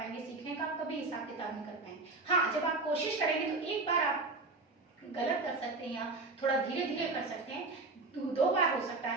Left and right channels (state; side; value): quieter; left; 3.5 dB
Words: सीखने का आप कभी हिसाब किताब नहीं कर पाएंगे। हाँ, जब आप कोशिश करेंगे तो एक बार आप गलत कर सकते हैं या थोड़ा धीरे धीरे कर सकते हैं, 2 बार हो सकता